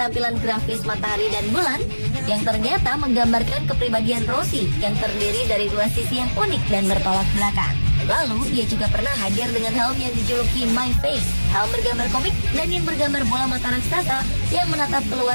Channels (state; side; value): inverted; both; correlation -1.00